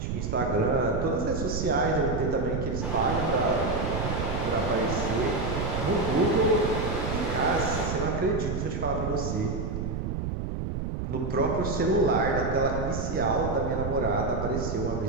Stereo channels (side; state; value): right; noise; rumble, 3 dB below the sound